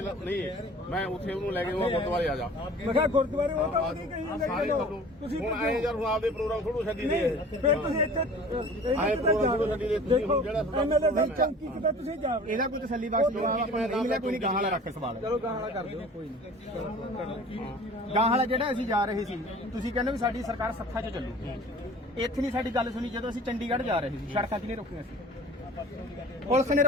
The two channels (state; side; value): normal; both; correlation 0.44